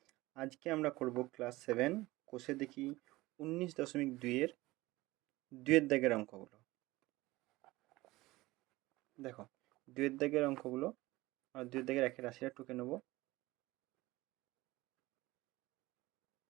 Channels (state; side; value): quieter; left; 19.4 dB